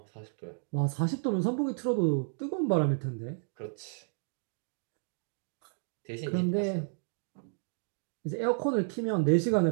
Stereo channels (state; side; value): silent; left; 56 dB below the other